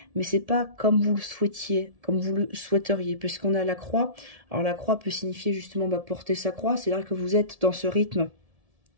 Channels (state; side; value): late; left; 1.7 ms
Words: mais c'est pas comme vous le souhaitiez, comme vous le souhaiteriez. Puisqu'on a la croix. Alors, la croix peut signifier justement porter sa croix. C'est-à-dire que vous êtes dans ce rythme